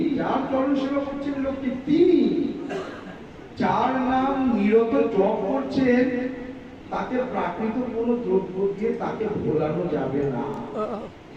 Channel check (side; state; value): both; identical; correlation 1.00